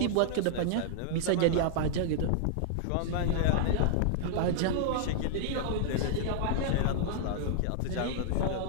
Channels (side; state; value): both; different; correlation -0.01